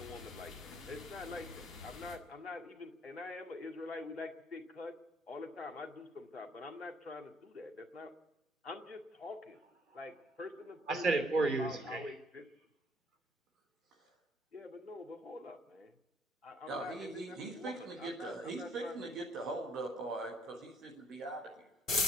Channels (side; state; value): both; normal; correlation 0.64